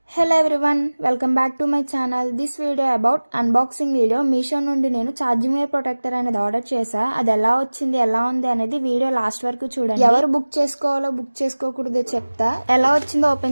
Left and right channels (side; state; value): both; inverted; correlation -1.00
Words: Hello everyone, welcome back to my channel. This video about unboxing video. Meesho నుండి నేను charging wire protector అనేది ఆర్డర్ చేశా. అది ఎలా వచ్చింది, ఎలా ఉంది అనేది వీడియో లాస్ట్ వరకు చూడండి. ఎవరు బుక్ చేసుకోవాలో బుక్ చేసుకోకూడదో చెప్తా. ఎలా వచ్చిందో